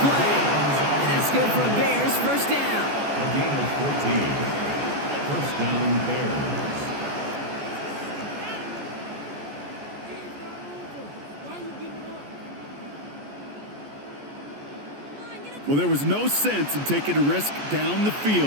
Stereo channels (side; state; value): left; late; 14 ms